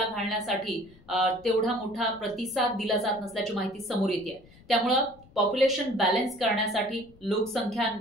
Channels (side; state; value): left; noise; rumble, 25 dB below the sound